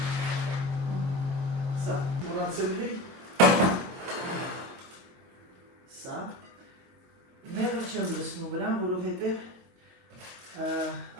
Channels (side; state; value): left; late; 22 ms